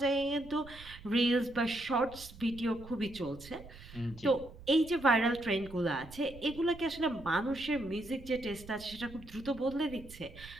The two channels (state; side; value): noise; right; rumble, 17 dB below the sound